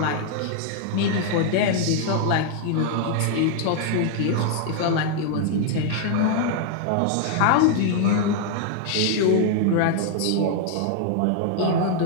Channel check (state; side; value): different; both; correlation 0.00